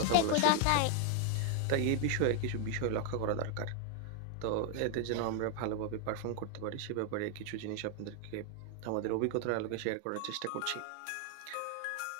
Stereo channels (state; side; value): different; both; correlation 0.00